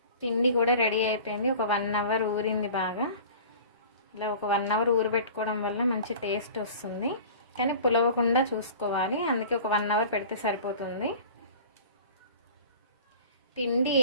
పిండి కూడా రెడీ అయిపోయింది. ఒక 1 అవర్ ఊరింది బాగా. ఇలా ఒక 1 అవర్ ఊరబెట్టుకోవడం వల్ల మంచి టేస్ట్ వస్తుంది, కానీ పులవకుండా చూసుకోవాలి. అందుకే ఒక 1 అవర్ పెడితే సరిపోతుంది. పిండి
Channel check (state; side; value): inverted; both; correlation -0.42